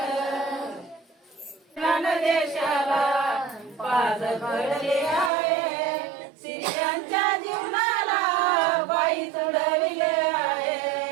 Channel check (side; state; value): left; drops out; at 5.3 s